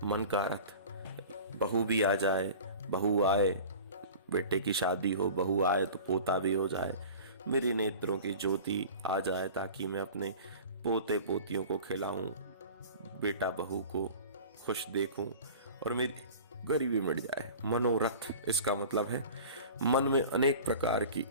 मन का रथ, बहू भी आ जाए, बहू आए, बेटे की शादी हो, बहू आए तो पोता भी हो जाए, मेरी नेत्रों की ज्योति आ जाए ताकि मैं अपने पोते पोतियों को खिलाऊं, बेटा बहू को खुश देखूं और मेरी गरीबी मिट जाए। मनोरथ, इसका मतलब है मन में अनेक प्रकार की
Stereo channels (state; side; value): inverted; both; correlation -0.40